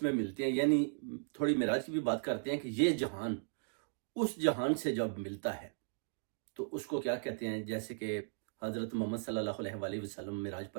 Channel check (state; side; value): silent; left; digital silence